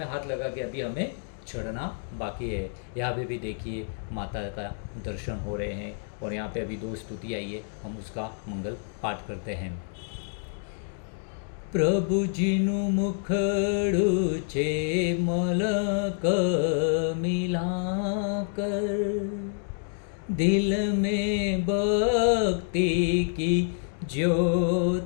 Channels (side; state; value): right; silent; digital silence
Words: हाथ लगा के अभी हमें चढ़ना बाकी है। यहाँ पे भी देखिए माता का दर्शन हो रहे हैं और यहाँ पे अभी 2 स्तुति आई है, हम उसका मंगल पाठ करते हैं। प्रभुजीनु मुखड़ू छे मलक मिलाकर, दिल में भक्ति की